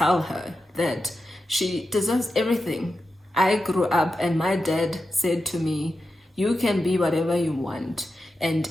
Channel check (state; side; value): normal; both; correlation 0.90